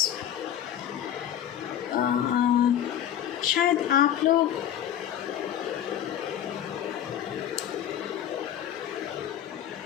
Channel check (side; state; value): right; quieter; 10.4 dB